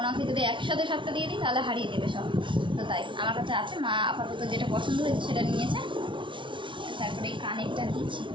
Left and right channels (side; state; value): left; late; 0.24 ms